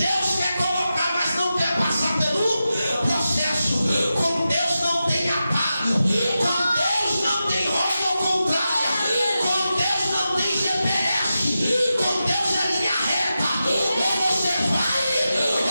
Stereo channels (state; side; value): inverted; both; correlation -0.91